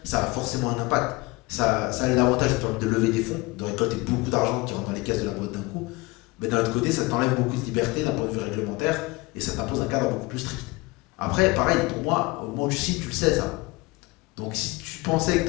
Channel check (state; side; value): quieter; right; 23.6 dB